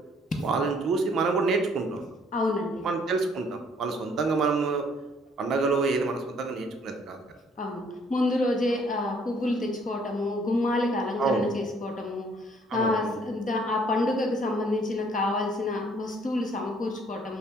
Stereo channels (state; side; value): normal; both; correlation 0.62